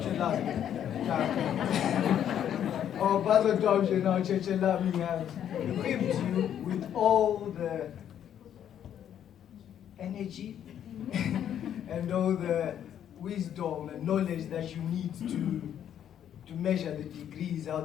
Our Basil Dobje, now Churchill, have equipped you with all the energy and all the wisdom and knowledge that you need to measure the degrees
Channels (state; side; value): quieter; right; 9.9 dB